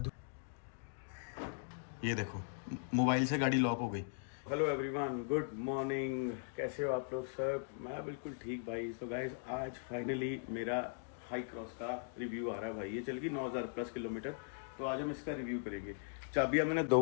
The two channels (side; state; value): right; silent; digital silence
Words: ये देखो मोबाइल से गाड़ी लॉक हो गई। हेलो एवरीवन, गुड मॉर्निंग, कैसे हो आप लोग सब? मैं बिल्कुल ठीक भाई। सो गाइस आज फाइनली मेरा हाई क्रॉस का रिव्यू आ रहा है भाई। ये चल गई 9,000 प्लस किलोमीटर, तो आज हम इसका रिव्यू करेंगे। चाबियाँ मैंने 2